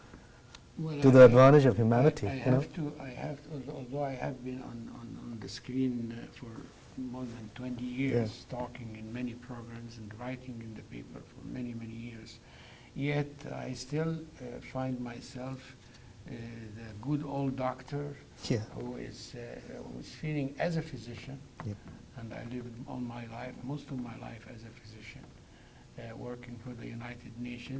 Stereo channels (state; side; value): identical; both; correlation 1.00